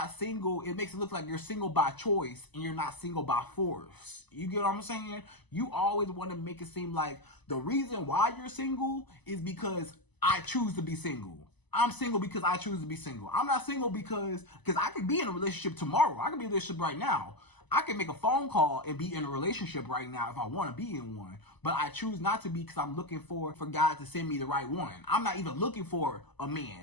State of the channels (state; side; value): late; right; 1.0 ms